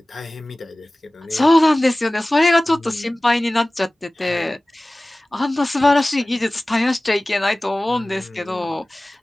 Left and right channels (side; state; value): both; normal; correlation 0.98